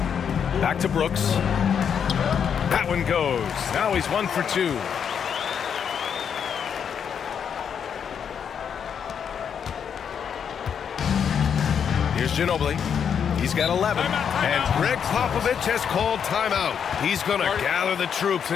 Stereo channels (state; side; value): quieter; right; 7.6 dB